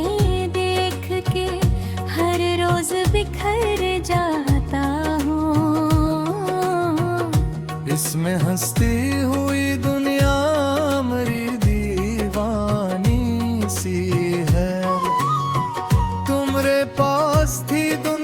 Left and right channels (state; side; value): identical; both; correlation 1.00